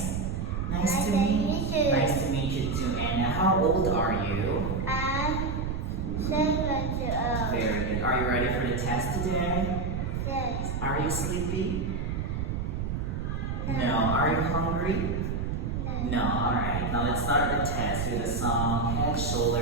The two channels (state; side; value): noise; right; rumble, 2 dB below the sound